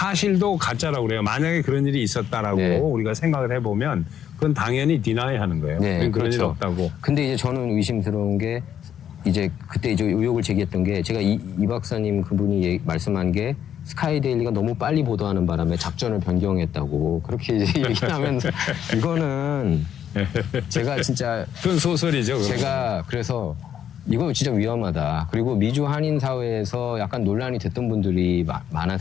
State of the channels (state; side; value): quieter; right; 9.4 dB